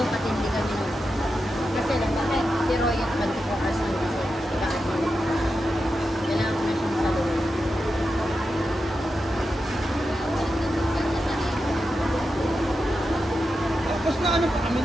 katindi kami nun. Kasi lang, bakit? Si Roy at 24 hours lang kasi. Nag-admin. Kailangan ko na siyang saluhin. Tapos na ano pa kami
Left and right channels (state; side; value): normal; both; correlation 0.89